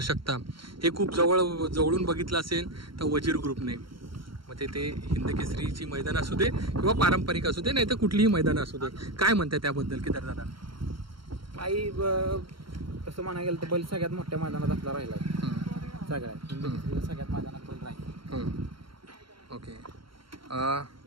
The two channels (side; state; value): left; late; 0.73 ms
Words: हे खूप जवळून बघितलं असेल तर वजीर ग्रुपने. म्हणजे ते हिंद केसरीची मैदान असू दे किंवा पारंपरिक असू दे, नाही तर कुठलीही मैदानं असू दे. काय म्हणताय त्याबद्दल केदार दादा? काही तसं म्हणायला गेलं तर बैल सगळ्यात मोठ्या मैदानात आपला राहिला. सगळ्यात सगळ्यात मैदानात बैल राहील. ओके.